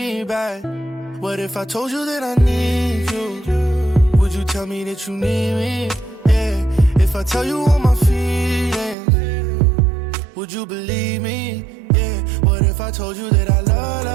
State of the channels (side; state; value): left; drops out; at 9.0 s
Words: back? What if I told you that I need you? Would you tell me that you need me? Yeah. If I tell you all my feelings, would you believe me? Yeah. What if I told you that I love